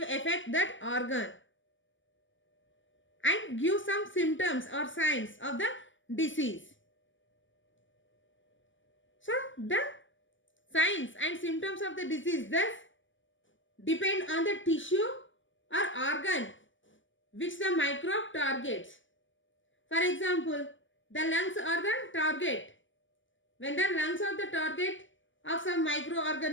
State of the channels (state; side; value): late; right; 0.55 ms